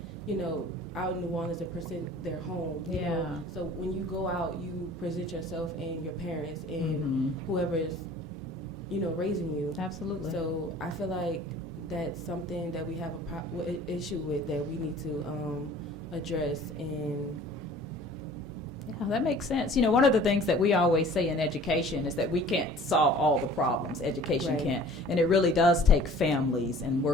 out in New Orleans and present their home. You Yeah. know? So when you go out, you present yourself and your parents and whoever is, raising you. Absolutely. So I feel like that's something that we have a issue with that we need to address. And Yeah, that makes sense. One of the things that we always say in education is that we can't solve all the problems. Education Right. can't. And it really does take families and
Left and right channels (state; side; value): normal; both; correlation 0.48